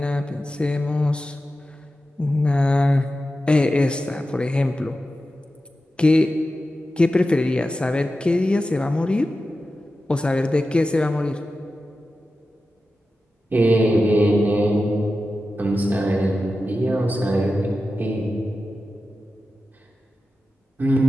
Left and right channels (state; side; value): normal; both; correlation 0.92